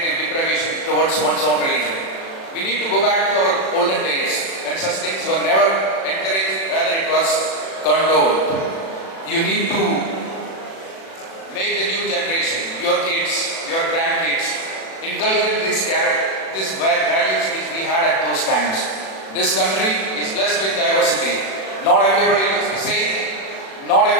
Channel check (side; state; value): right; late; 36 ms